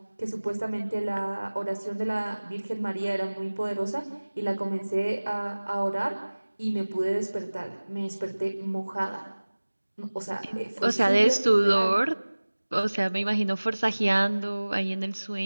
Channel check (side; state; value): both; inverted; correlation -1.00